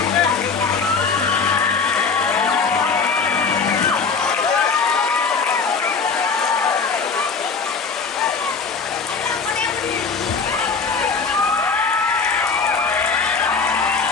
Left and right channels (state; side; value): quieter; right; 5.0 dB